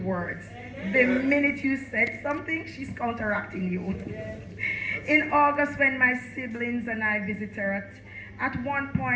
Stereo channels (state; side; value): identical; both; correlation 1.00